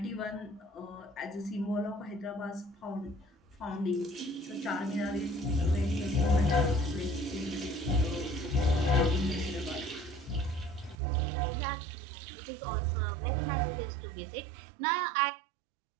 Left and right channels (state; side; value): drops out; left; at 11.0 s